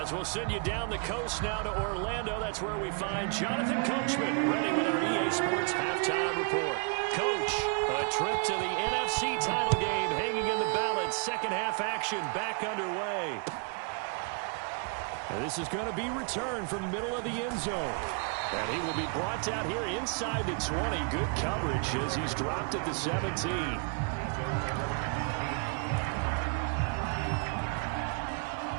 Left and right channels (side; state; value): left; quieter; 38.9 dB